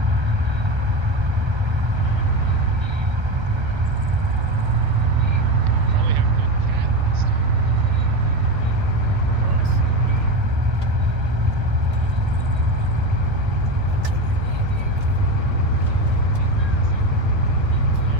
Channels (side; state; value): left; late; 1.3 ms